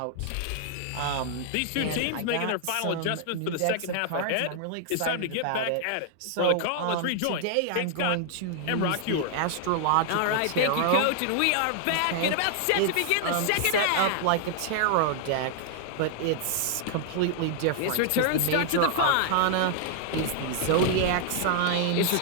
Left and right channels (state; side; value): different; both; correlation -0.01